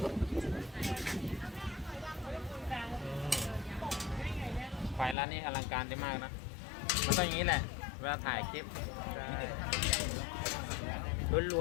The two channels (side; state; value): right; drops out; at 5.2 s